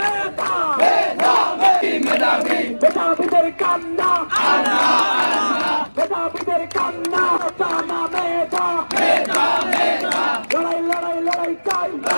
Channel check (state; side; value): inverted; both; correlation -1.00